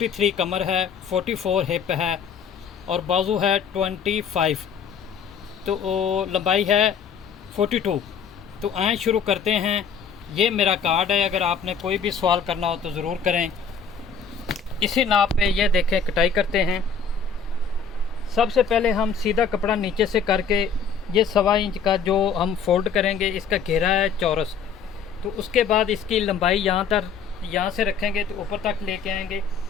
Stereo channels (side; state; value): right; quieter; 6.2 dB